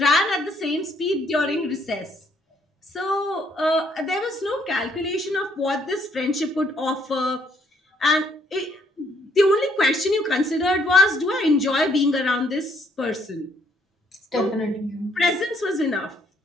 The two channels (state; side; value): normal; both; correlation 0.67